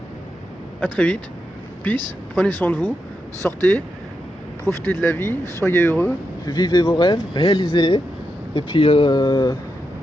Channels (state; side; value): normal; both; correlation 0.86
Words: À très vite. Peace. Prenez soin de vous. Sortez. Profitez de la vie. Soyez heureux. Vivez vos rêves, réalisez-les, et puis la